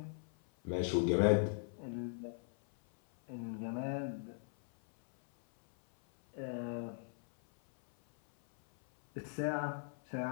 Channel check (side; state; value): right; silent; 52 dB below the other